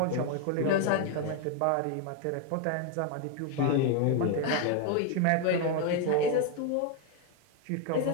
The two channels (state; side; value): different; both; correlation 0.01